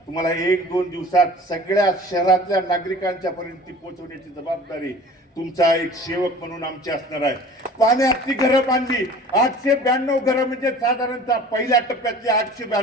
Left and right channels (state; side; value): normal; both; correlation 0.43